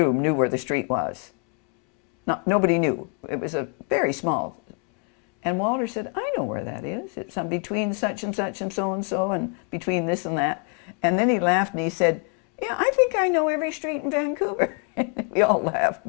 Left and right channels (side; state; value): right; quieter; 36.0 dB